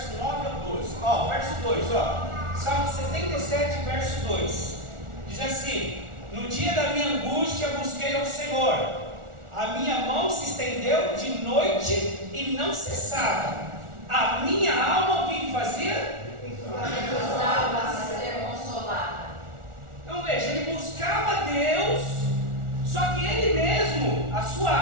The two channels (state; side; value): late; left; 1.4 ms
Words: 9 ao 12. Verso 2, Salmo 77, verso 2. Diz assim: no dia da minha angústia busquei ao Senhor. A minha mão se estendeu de noite e não cessava. A minha alma o que fazia? Precisava ser consolada. Então veja, ele buscava Deus, só que ele mesmo, a sua